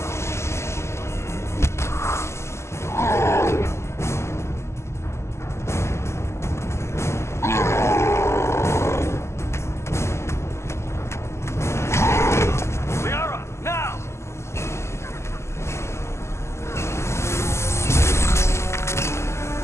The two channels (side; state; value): right; late; 0.13 ms